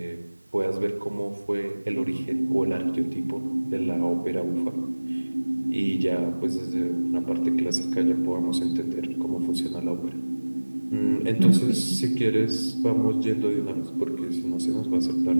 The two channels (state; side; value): inverted; both; correlation -1.00